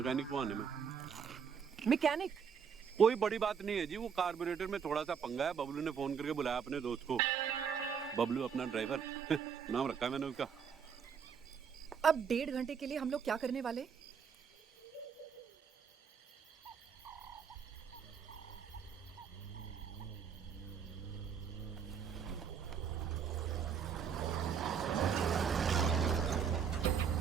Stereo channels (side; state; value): left; quieter; 6.9 dB